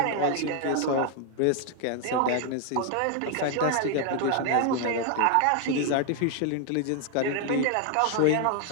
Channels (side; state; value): both; different; correlation 0.00